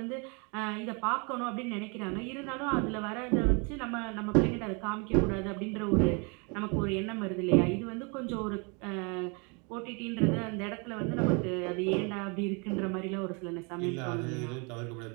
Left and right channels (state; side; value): quieter; left; 32.8 dB